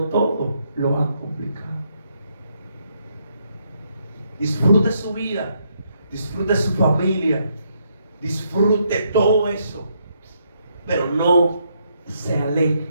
todo, lo han complicado. Disfrute su vida, disfrute su familia, disfrute todo eso, pero no se aleje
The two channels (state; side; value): inverted; both; correlation -0.75